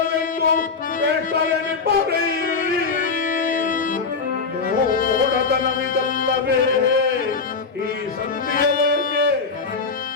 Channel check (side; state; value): right; quieter; 4.8 dB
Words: ಬೇಟರೆನಿಬ್ಬರೇ. ನೋಡತನವಿದಲ್ಲವೇ ಈ ಸಂಧಿಯ ಬಯಕೆ,